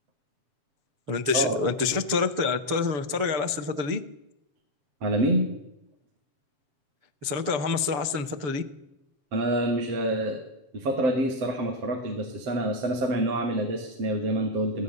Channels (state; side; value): late; left; 6.9 ms